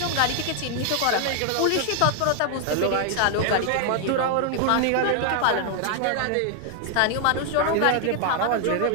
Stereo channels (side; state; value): both; different; correlation 0.00